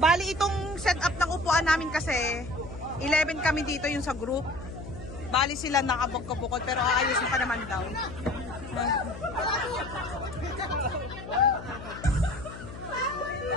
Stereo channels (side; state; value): left; noise; hum, 12 dB below the sound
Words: Bali itong setup ng upuan namin kasi 11 kami dito yung sa group. Bali sila nakabukod-bukod pero aayusin pa naman daw.